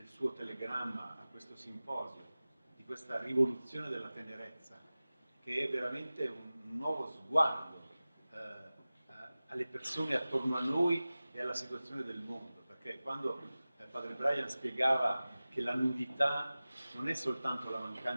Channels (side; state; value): both; inverted; correlation -0.97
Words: suo telegramma a questo simposio, di questa rivoluzione della tenerezza, che è veramente un nuovo sguardo alle persone attorno a noi e alla situazione del mondo, perché quando Padre Brian spiegava che la nudità non è soltanto la